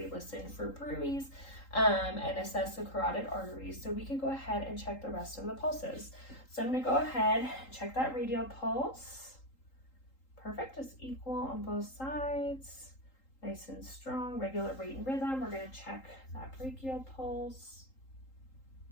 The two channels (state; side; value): late; right; 3.8 ms